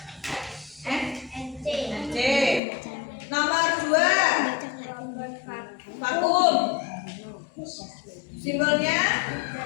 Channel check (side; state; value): right; drops out; at 2.6 s